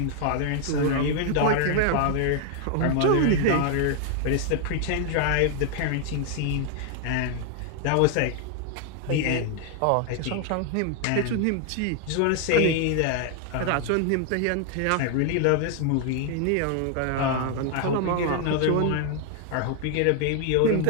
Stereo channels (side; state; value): both; different; correlation 0.00